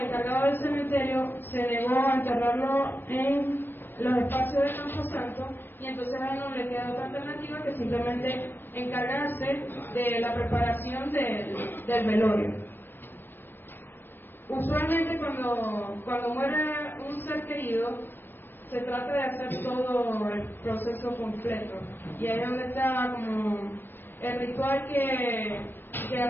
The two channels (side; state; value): right; late; 0.097 ms